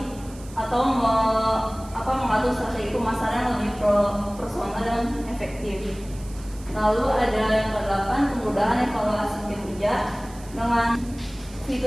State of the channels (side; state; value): right; noise; hiss, 21 dB below the sound